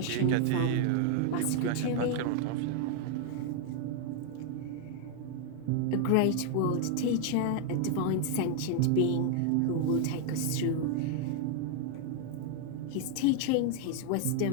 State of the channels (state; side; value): different; both; correlation 0.00